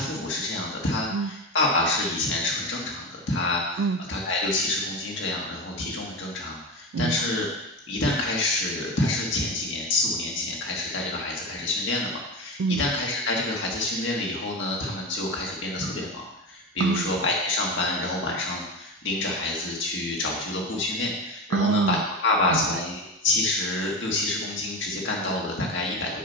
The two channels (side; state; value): both; normal; correlation 0.22